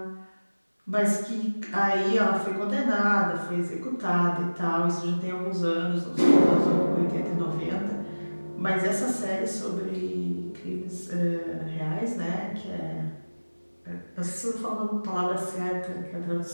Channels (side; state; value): both; inverted; correlation -1.00